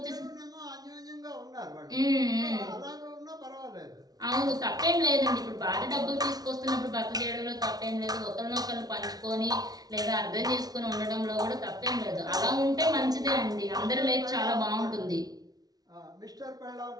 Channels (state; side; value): late; left; 0.19 ms